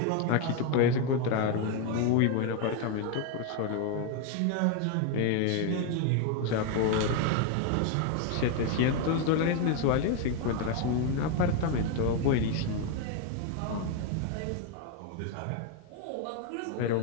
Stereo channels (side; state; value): both; different; correlation 0.01